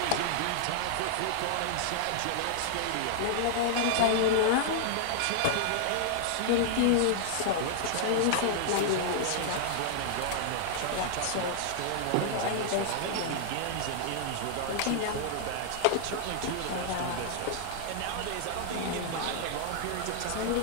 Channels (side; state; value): both; different; correlation -0.01